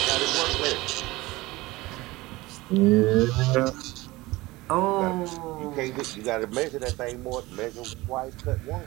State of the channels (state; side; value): quieter; left; 20.3 dB